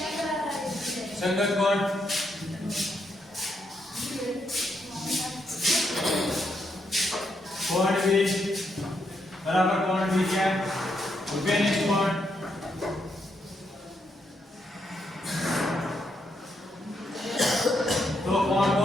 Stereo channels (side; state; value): both; normal; correlation 0.79